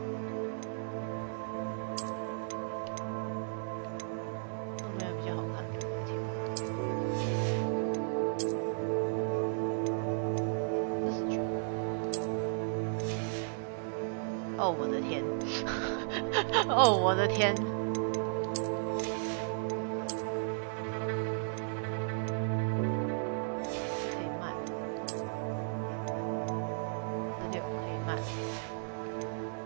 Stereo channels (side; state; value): left; silent; digital silence